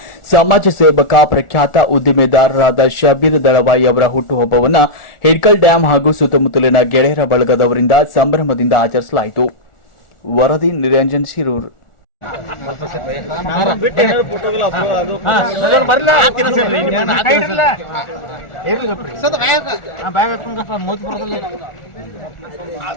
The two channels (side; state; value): right; late; 1.4 ms